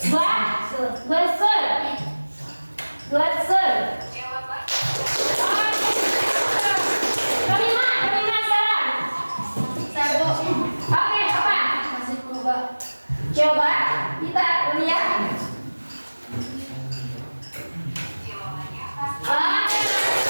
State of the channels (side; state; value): both; inverted; correlation -1.00